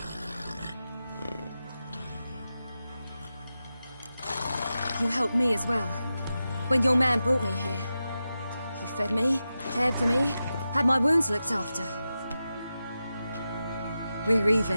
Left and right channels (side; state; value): both; inverted; correlation -0.92